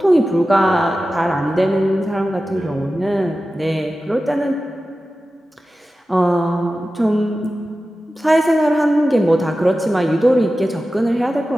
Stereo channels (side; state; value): both; normal; correlation 0.94